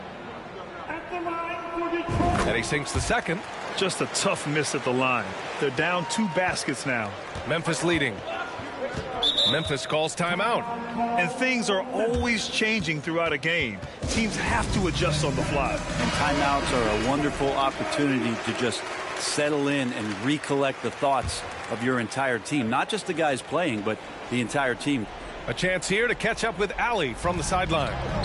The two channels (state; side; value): identical; both; correlation 1.00